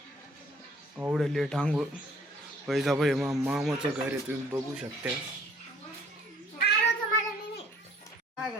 एवढे लेट आंघोळ. पैसा भाई मामाचं घर आहे तुम्ही बघू शकता.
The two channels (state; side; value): normal; both; correlation 0.58